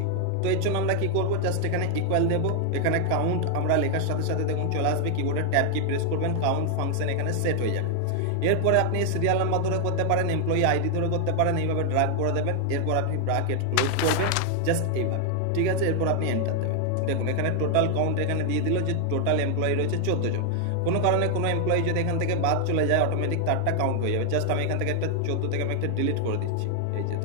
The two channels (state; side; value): different; both; correlation 0.00